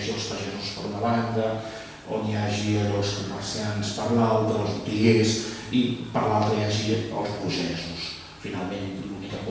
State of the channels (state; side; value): identical; both; correlation 1.00